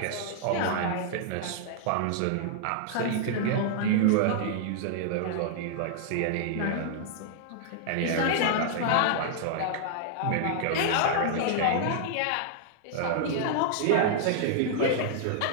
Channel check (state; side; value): different; both; correlation -0.01